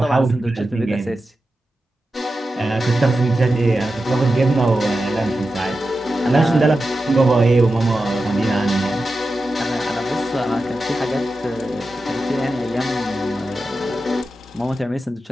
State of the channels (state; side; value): normal; both; correlation 0.92